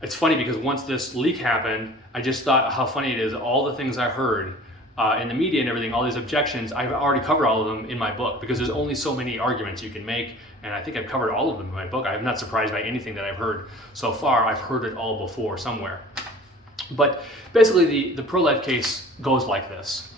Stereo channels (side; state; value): both; normal; correlation 0.45